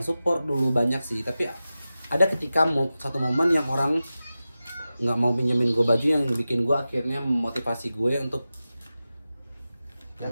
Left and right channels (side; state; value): both; inverted; correlation -0.94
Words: dulu banyak sih. Tapi ada ketika satu momen yang orang nggak mau pinjemin gue baju, yang bikin gue akhirnya memotivasi gue untuk Yang